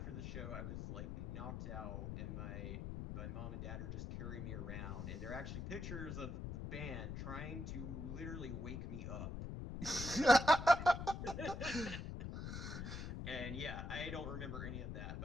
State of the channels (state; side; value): noise; left; rumble, 5 dB below the sound